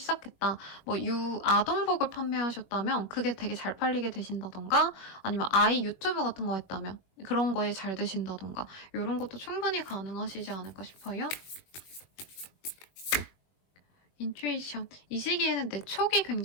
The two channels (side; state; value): right; late; 21 ms